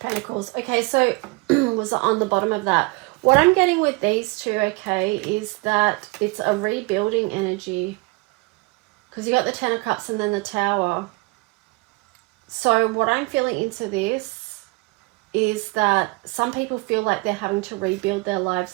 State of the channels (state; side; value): quieter; left; 26.4 dB